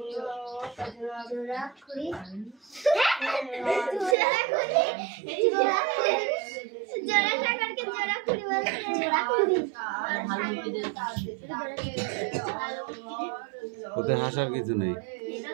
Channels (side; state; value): left; drops out; at 4.2 s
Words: ওতে হাসার কিছু নেই,